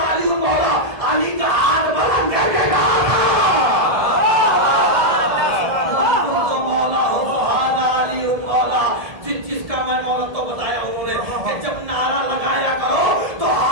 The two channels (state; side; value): late; left; 1.7 ms